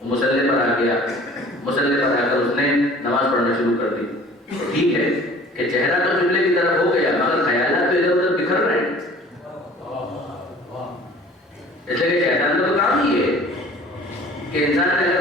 وہ مصلی پر آ گیا، مصلی پر آ کر اس نے نماز پڑھنا شروع کر دی. ٹھیک ہے کہ چہرہ تو قبلے کی طرف ہو گیا مگر خیالات تو ادھر ادھر بکھر رہے ہیں. اس لیے کہ شیطان کا تو کام ہی ہے کہ انسان نے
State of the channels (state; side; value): normal; both; correlation 0.48